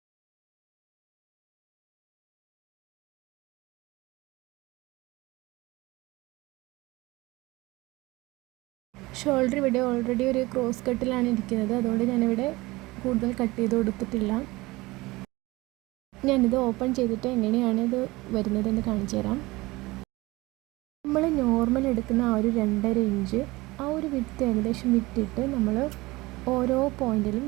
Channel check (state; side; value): quieter; left; 21.2 dB